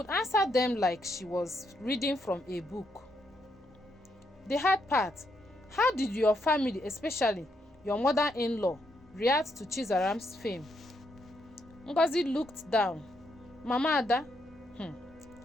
answer them like she was reading from a book. The hard part: how did your family, especially your mother-in-law, react to Chizaram's fame? Ngozi looked down. Mama Ada,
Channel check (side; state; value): both; normal; correlation 0.77